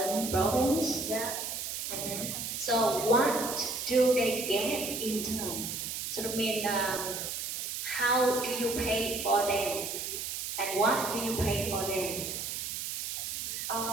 province? Yeah. Mm-hmm. So what do they get in turn? So I mean, how do you pay for them, and what do you pay for them?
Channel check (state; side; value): noise; right; hiss, 4 dB below the sound